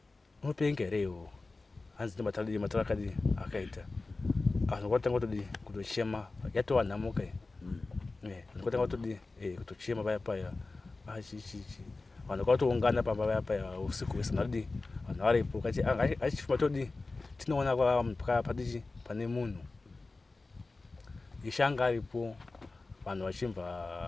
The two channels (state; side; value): quieter; right; 3.5 dB